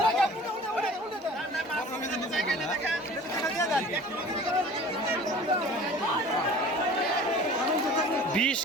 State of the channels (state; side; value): normal; both; correlation 0.44